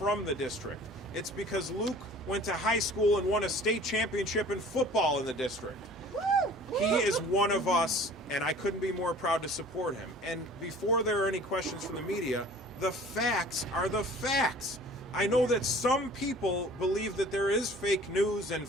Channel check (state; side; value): normal; both; correlation 0.47